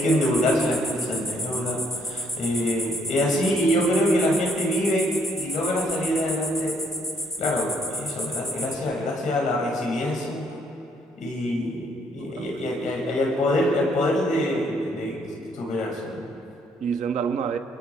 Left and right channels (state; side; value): normal; both; correlation 0.68